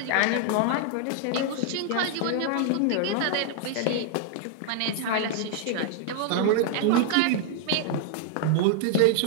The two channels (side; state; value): both; different; correlation 0.00